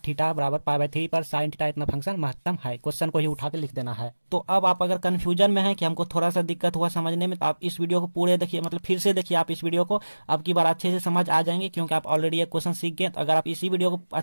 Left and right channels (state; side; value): inverted; both; correlation -1.00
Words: थीटा बराबर π/3 पर साइन थीटा इतना फंक्शन महत्तम है। क्वेश्चन को ही उठा के लिख देना है। तो अब आप अगर कंफ्यूजन में है कि हमको थोड़ा सा दिक्कत हुआ समझने में, तो आप इस वीडियो को पूरे देखिए, मतलब फिर से देखिए आप इस वीडियो को, अब की बार अच्छे से समझ आ जाएंगे, क्योंकि आप ऑलरेडी एक क्वेश्चन सीख गए। तो अगर आप इसी वीडियो को